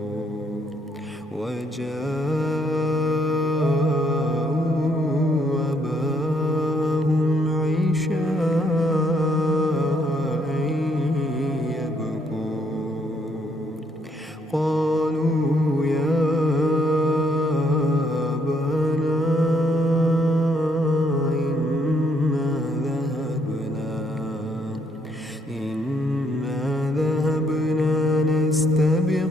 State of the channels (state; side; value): normal; both; correlation 0.71